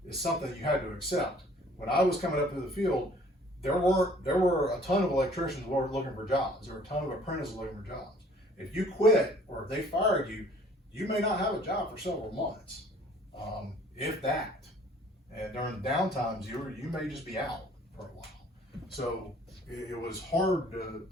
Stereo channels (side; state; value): both; normal; correlation 0.55